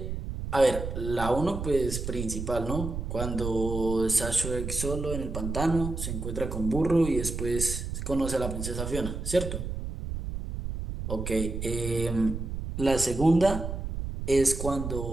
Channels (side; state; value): right; noise; rumble, 5 dB below the sound